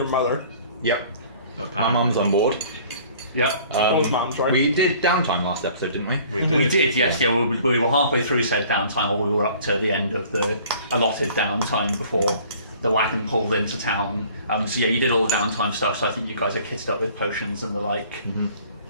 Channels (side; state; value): both; inverted; correlation -0.52